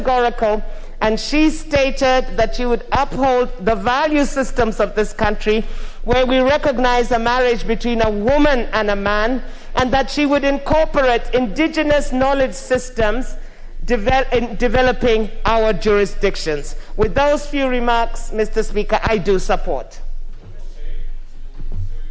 and she stated that she would uphold the value systems of this country, where we recognize a marriage between a woman and a man, and that she would incorporate indigenous knowledge systems in developing our jurisdictions. With those few remarks, Mr. Speaker, I do support.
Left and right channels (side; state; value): both; identical; correlation 1.00